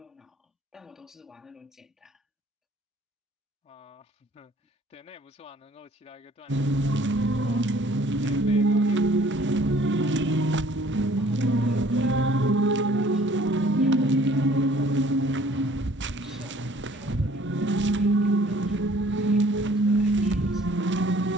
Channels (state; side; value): normal; both; correlation 0.55